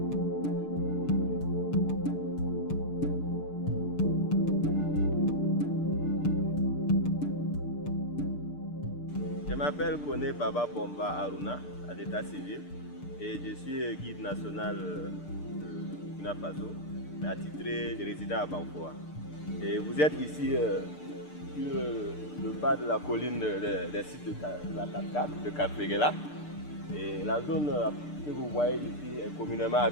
m'appelle Kone Baba Bomba Aruna à l'état civil et je suis guide national de Burkina Faso, mais attitré, je réside à Banfoa. Et vous êtes ici sur le bas de la colline des sites de la cascade de Karfegela. Et la zone que vous voyez ici est communément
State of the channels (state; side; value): late; right; 6.7 ms